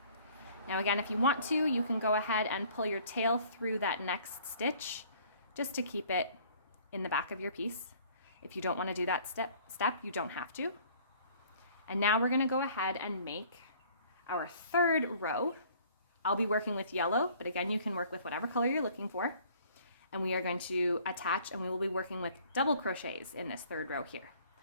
Now again, if you want to, you can go ahead and pull your tail through that next stitch just to keep it in the back of your piece. If you don't want to do that step, you don't have to. And now we're going to go ahead and make our third row. I'll be working with yellow, but again, you can work with whatever color you're looking for. And we are going to attach, and we will be working with double crochets in this third row here.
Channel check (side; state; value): both; inverted; correlation -0.55